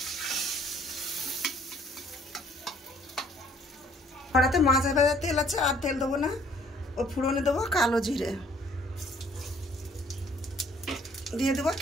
কড়াতে মাছ ভাজার তেল আছে, আর তেল দেবো না। ও ফুড়নে দেবো কালো জিরে, দিয়ে দেবো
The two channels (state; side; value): normal; both; correlation 0.60